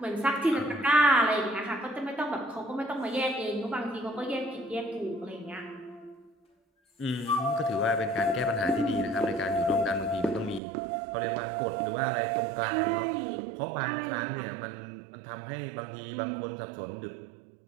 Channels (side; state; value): left; drops out; at 10.6 s